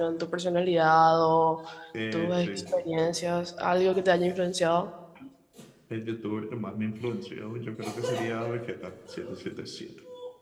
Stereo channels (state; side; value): identical; both; correlation 1.00